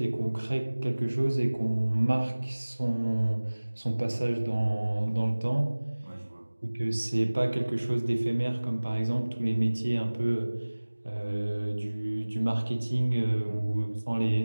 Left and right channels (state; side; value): inverted; both; correlation -1.00